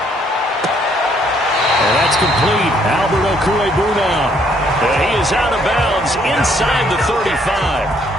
And that's complete. Albert Okwuegbunam. And he is out of bounds inside the 35.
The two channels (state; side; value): normal; both; correlation 0.67